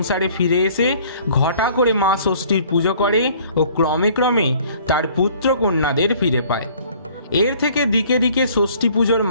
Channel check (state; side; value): inverted; both; correlation -0.55